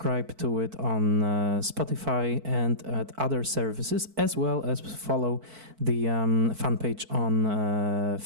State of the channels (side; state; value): left; late; 4.5 ms